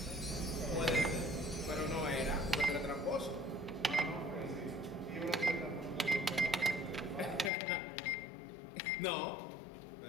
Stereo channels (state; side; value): drops out; right; at 7.5 s